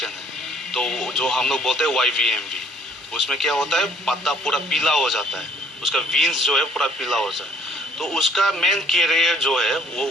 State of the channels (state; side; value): normal; both; correlation 0.60